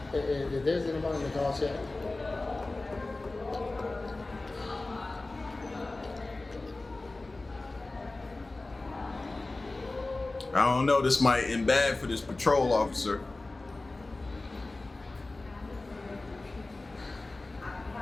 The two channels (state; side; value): quieter; right; 3.1 dB